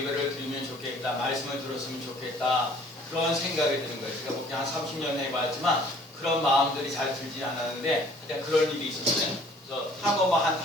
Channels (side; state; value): both; normal; correlation 0.55